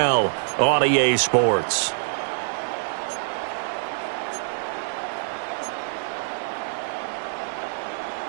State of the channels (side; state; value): left; silent; digital silence